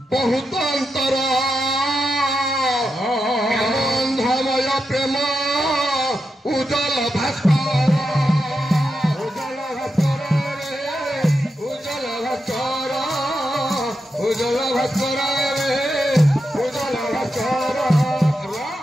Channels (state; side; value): normal; both; correlation 0.87